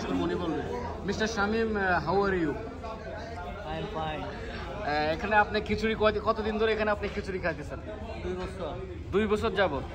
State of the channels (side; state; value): both; identical; correlation 1.00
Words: করবো, উনি বলবে। Mister Shamim, how are you? এখানে আপনি খিচুড়ি কতদিন ধরে এখানে আপনি খিচুড়ি খাইতেছেন? 2 বছর। 2 বছর যাবত।